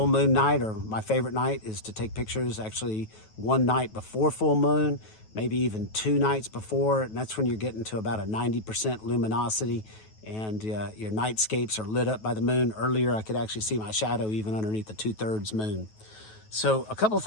moon night, or my favorite night is to take pictures actually one night before full moon, maybe even 2 nights before, and that's when you're getting to about a 90% luminosity, and your nightscapes are lit up by the moon. Earlier I could actually see my shadow even underneath the 2/3 moon. So a couple of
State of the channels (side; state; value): right; late; 9.3 ms